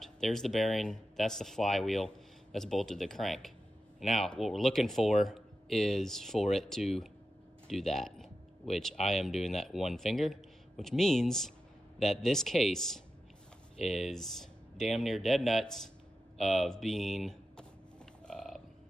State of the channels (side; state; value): both; normal; correlation 0.91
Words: There's the bearing. That's the flywheel that's bolted to the crank. Now, what we're looking for is for it to do that, which I am doing that one finger, which means that this case is damn near dead nuts of being